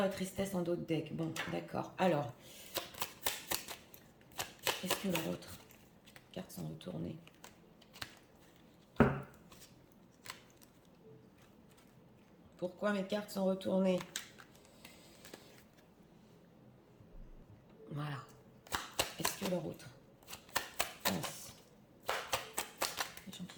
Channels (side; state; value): both; identical; correlation 1.00